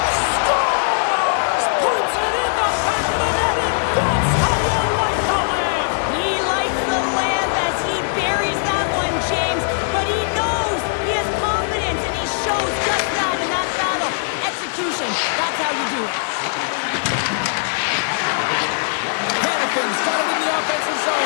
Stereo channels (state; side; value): silent; right; digital silence